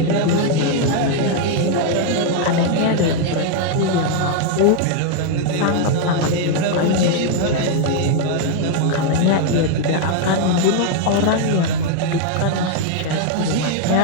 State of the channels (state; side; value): different; both; correlation 0.00